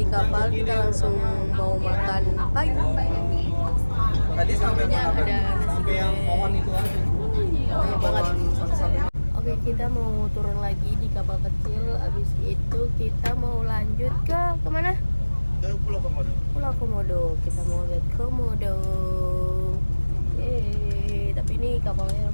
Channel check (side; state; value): both; inverted; correlation -1.00